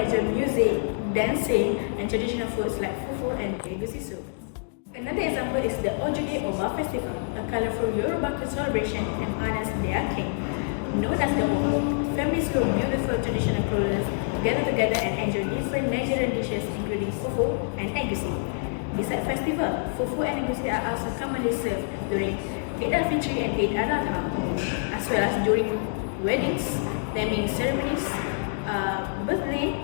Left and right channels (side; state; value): right; silent; digital silence